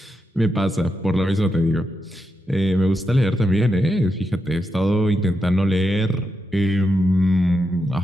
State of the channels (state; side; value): normal; both; correlation 0.85